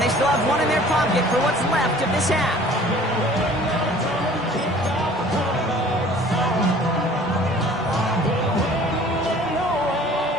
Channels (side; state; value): both; normal; correlation 0.50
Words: they still have one in their pocket for what's left of this half.